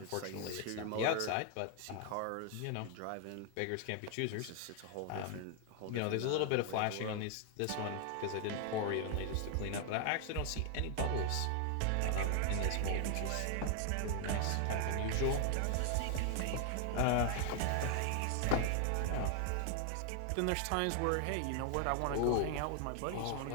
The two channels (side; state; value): both; different; correlation 0.00